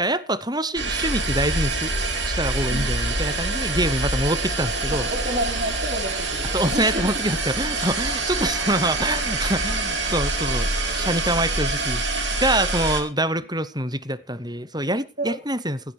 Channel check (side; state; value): both; normal; correlation 0.35